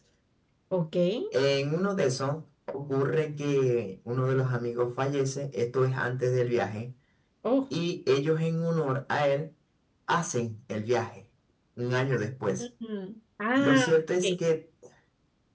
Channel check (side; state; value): both; identical; correlation 1.00